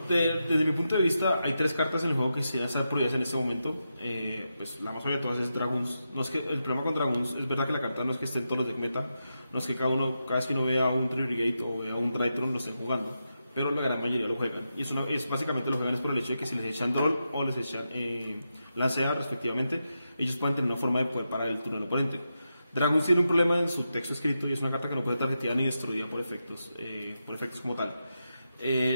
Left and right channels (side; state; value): both; inverted; correlation -0.88